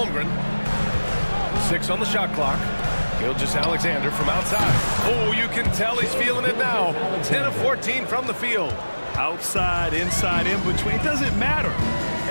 6 on the shot clock. Gilgeous-Alexander from outside. Oh, you can tell he's feeling it now. 10 of 14 from the field. Outside, inside, in between, it doesn't matter.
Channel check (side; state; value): both; inverted; correlation -1.00